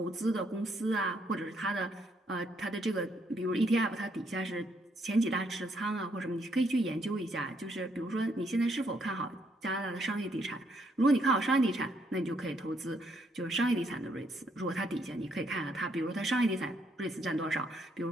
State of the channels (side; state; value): both; normal; correlation 0.72